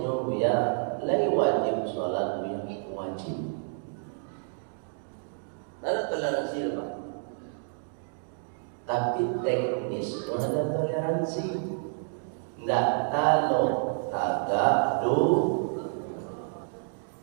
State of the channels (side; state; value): left; silent; digital silence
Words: Buya. Lai wajib sholat Buya, wajib. Ada toleransi Pak. Tapi teknis itu ada toleransi. Nggak kalau agak itu